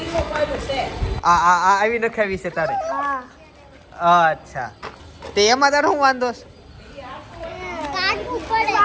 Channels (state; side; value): identical; both; correlation 1.00